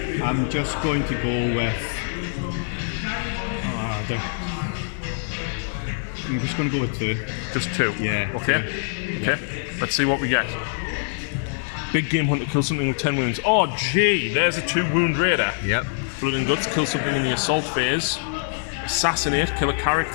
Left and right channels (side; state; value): right; silent; digital silence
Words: I'm just going to go with... I'm just going to go with 2. Just 2? Yeah. Okay. 2. Okay. Let's see what we get. Big Game Hunter, kill something with 10 wounds. Oh, gee, there's a 2 wound raider. Yep. Blood and Guts, kill something in the assault phase. Assassinate, kill a